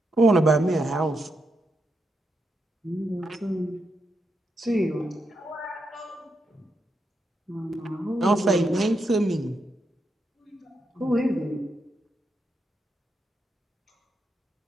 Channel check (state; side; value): normal; both; correlation 0.83